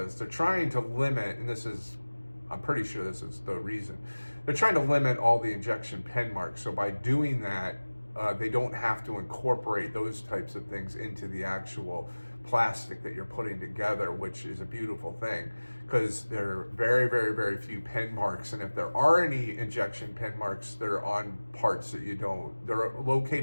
They're trying to limit, and I'm pretty sure this is the reason. They're trying to limit all the injection pen marks. So by doing that, they don't have to incorporate those types of things into the actual plastic that you're putting together, which is a beautiful thing, because there are very, very, very few pen marks. And if there are any injection pen marks, they're on parts that they're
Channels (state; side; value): inverted; both; correlation -1.00